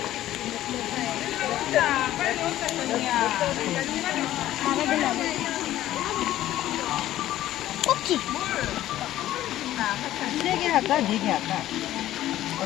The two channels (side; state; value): right; quieter; 13.8 dB